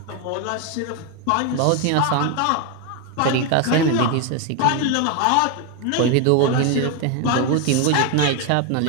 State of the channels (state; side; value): different; both; correlation 0.01